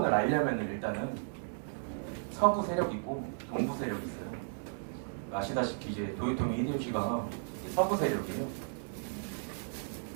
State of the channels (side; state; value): left; silent; 55 dB below the other